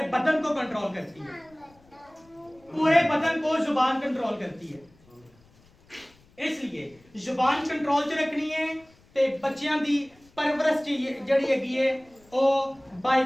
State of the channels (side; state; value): left; noise; rumble, 30 dB below the sound